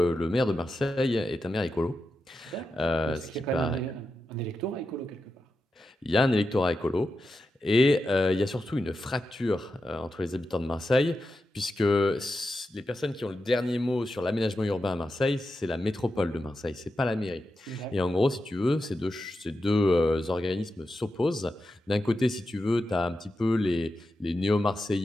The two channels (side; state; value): both; normal; correlation 0.89